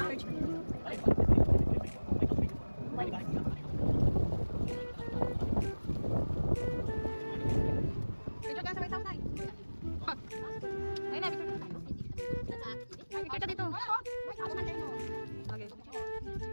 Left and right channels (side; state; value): both; inverted; correlation -1.00